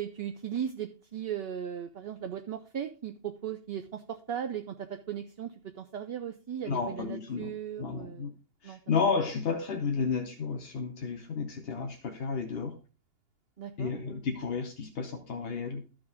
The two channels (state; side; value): late; right; 2.8 ms